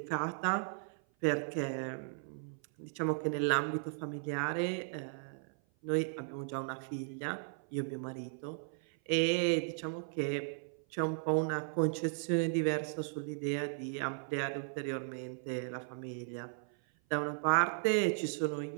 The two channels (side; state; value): left; silent; 54 dB below the other